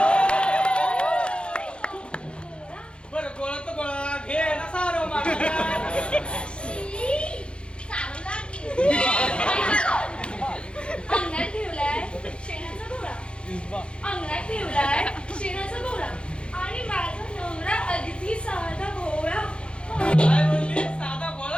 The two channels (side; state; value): right; late; 0.056 ms